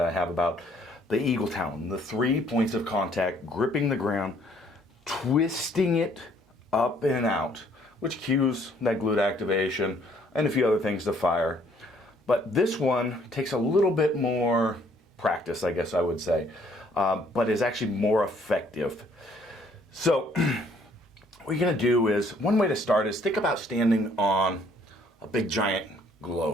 I have about the eagle talon, the 3 points of contact, gripping the ground, twisting it up and out, which cues that glute activation and a few other things to fire. But this one takes a little bit more practice, I guess I would say, but is actually more effective. So what you're going to do is, one way to start is think about standing on a big giant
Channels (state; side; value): normal; both; correlation 0.63